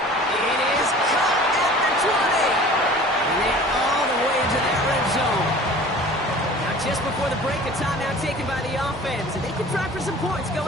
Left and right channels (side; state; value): both; normal; correlation 0.44